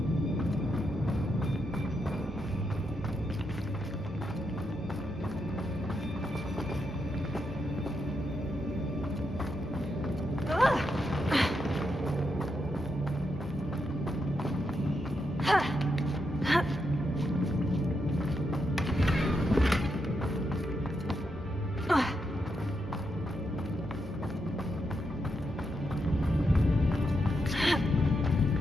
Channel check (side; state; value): both; normal; correlation 0.82